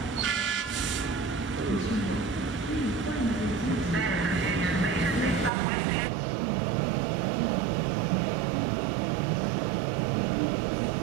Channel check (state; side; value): drops out; left; at 5.5 s